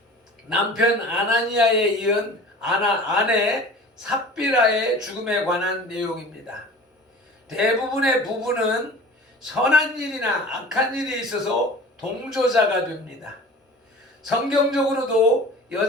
남편 아나니아에 이은 아내 삽비라의 죽음에 관한 내용입니다. 대부분의 부부는 선한 일이나 악한 일이 있어서 동조자가 됩니다. 성경적으로도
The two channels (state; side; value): normal; both; correlation 0.41